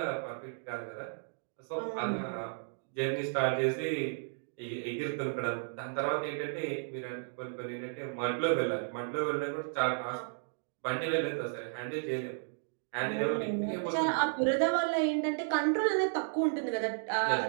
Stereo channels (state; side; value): silent; left; digital silence